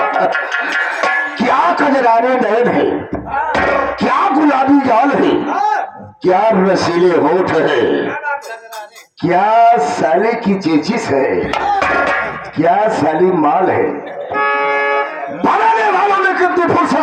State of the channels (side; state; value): both; identical; correlation 1.00